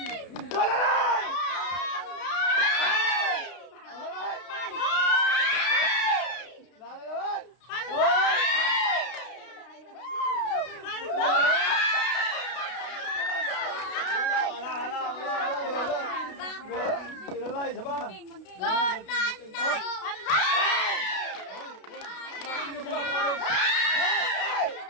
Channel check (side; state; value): right; late; 32 ms